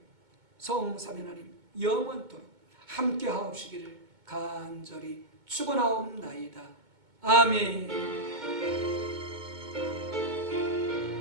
성삼위 하나님 영원토록 함께 하옵시기를 간절히 축원하옵나이다. 아멘.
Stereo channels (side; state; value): left; late; 2.2 ms